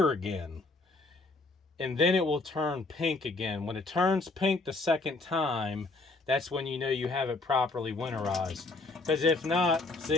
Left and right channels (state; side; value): quieter; right; 3.3 dB